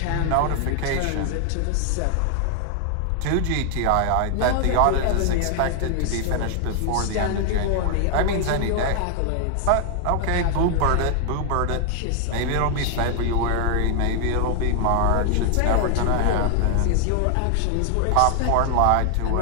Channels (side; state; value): both; different; correlation 0.00